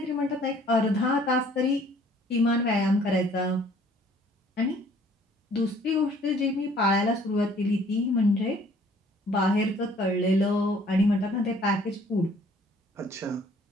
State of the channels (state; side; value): normal; both; correlation 0.57